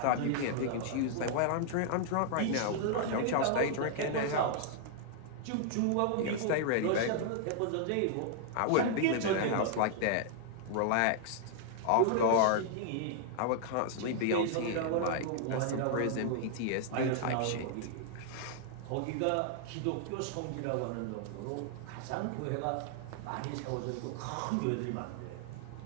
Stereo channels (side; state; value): both; different; correlation 0.00